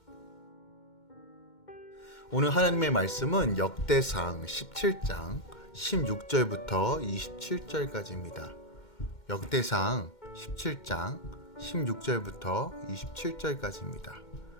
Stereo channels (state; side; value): late; right; 2.1 ms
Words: 오늘 하나님의 말씀은 역대상 17장 16절부터 27절까지입니다. 역대상 17장 16절부터 27절까지입니다.